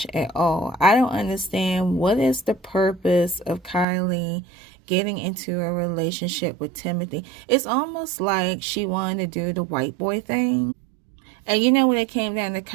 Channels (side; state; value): left; drops out; at 3.9 s